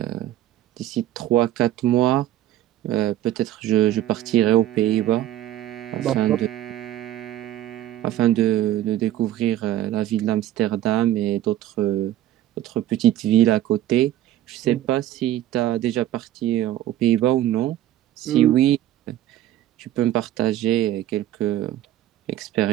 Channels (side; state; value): left; quieter; 13.1 dB